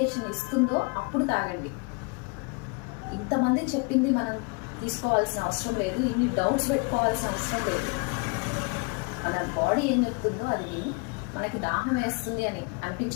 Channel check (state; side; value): quieter; right; 32.2 dB